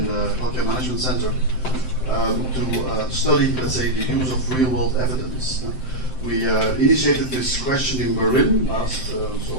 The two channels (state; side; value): late; right; 7.7 ms